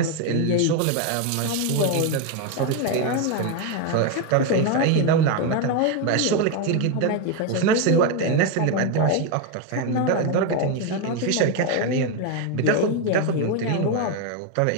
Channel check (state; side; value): different; both; correlation 0.02